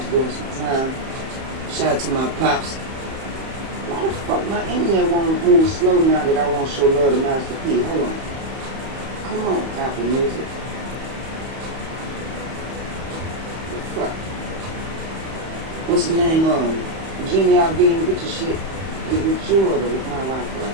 some time. Shout out to my pops. Why the fuck my internet won't move slow now that I won't show love to Master P? Hold on. Come on, Apple Music. The fuck? What's his name? Genie, I'll be in with your shit. With you or with my Wi-Fi.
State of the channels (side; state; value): left; late; 31 ms